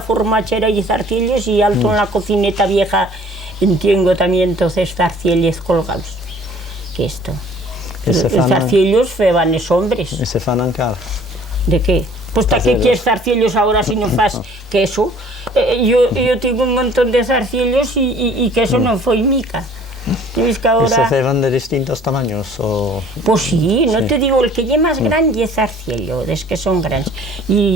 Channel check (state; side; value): normal; both; correlation 0.53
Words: y zarcillos y alto en la cocineta vieja tengo también entonces zarcillos colgados. Que esto. Els zarcillos feban los hombres. ¿Y se fan encara? ¿De qué? Pues ¿para qué quieres zarcillos ahora si no fas queso? Yo tengo un montón de zarcillos y queso no fue mica. ¿Ves que ahora... ¿Y se feban de distintos tamaños? O... Pues sí, no te digo, el que es más grande es zarcillo, es que son grandes.